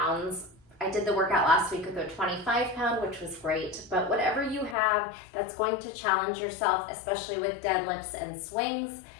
I did the workout last week with a 25-pound, which was great, but whatever you have that's going to challenge yourself, especially with deadlifts and swings,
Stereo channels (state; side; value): drops out; right; at 4.8 s